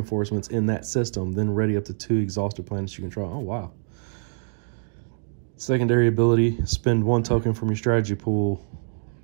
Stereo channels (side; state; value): left; silent; digital silence